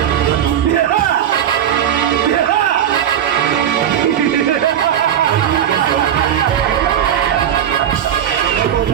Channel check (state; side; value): quieter; left; 10.0 dB